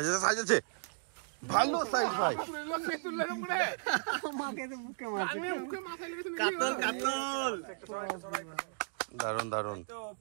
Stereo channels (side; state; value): left; silent; digital silence